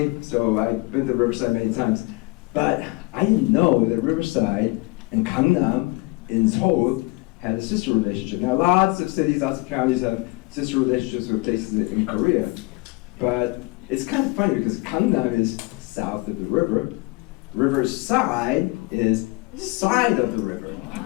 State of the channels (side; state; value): right; quieter; 24.4 dB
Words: so I've been to Riverside many times, but I didn't know that Riverside and Gangnam in Seoul had a sister relationship. Now lots of cities, lots of counties have sister relationships with places in Korea, but it's kind of funny because Gangnam is south of the river, Riverside is side of the river,